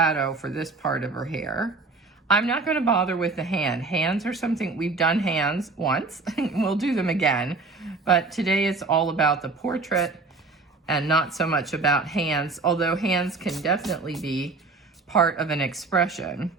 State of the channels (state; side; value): quieter; left; 3.7 dB